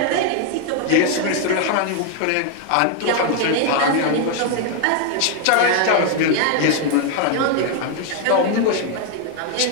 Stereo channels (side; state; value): both; different; correlation 0.00